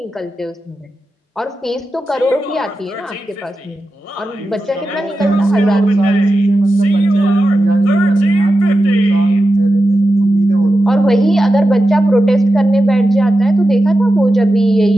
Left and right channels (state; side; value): normal; both; correlation 0.91